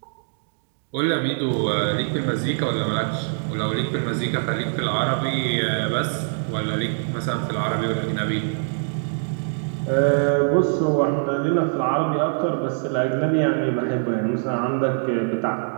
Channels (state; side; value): silent; left; digital silence